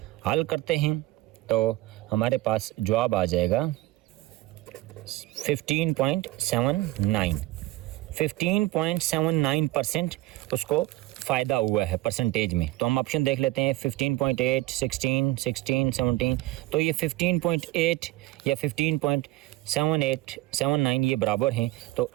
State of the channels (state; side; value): quieter; left; 17.8 dB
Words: हल करते हैं तो हमारे पास जवाब आ जाएगा 15.79% उसको फ़ायदा हुआ है परसेंटेज में। तो हम ऑप्शन देख लेते हैं 15.8, 16, 17, तो ये 15.8 या 15.79 ये बराबर हैं, तो